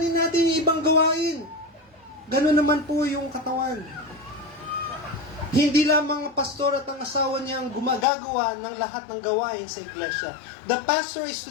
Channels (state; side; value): drops out; right; at 8.1 s